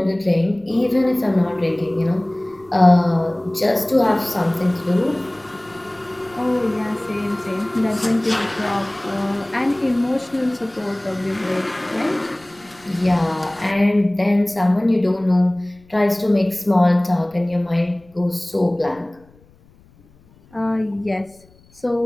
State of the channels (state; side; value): noise; left; rumble, 29 dB below the sound